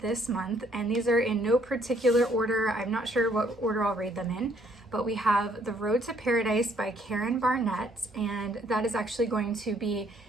this month, and these are in no particular order, I'm not sure what order I'll read them in, but we have The Road to Paradise by Karen Barnett, and that is actually going to be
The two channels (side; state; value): both; normal; correlation 0.66